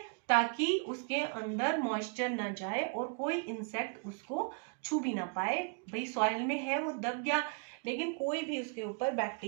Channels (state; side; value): quieter; left; 37.3 dB